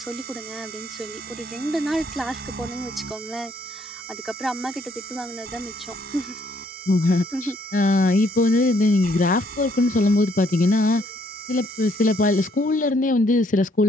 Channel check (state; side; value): normal; both; correlation 0.68